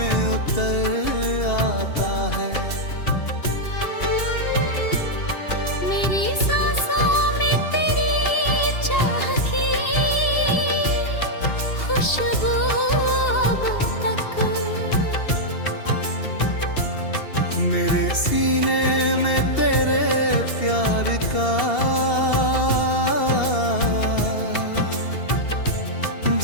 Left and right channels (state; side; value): late; right; 2.7 ms